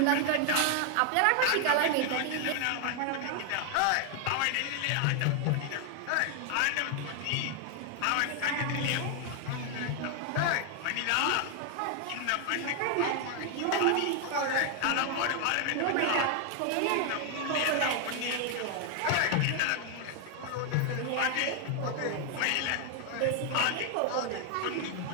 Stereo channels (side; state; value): both; different; correlation 0.00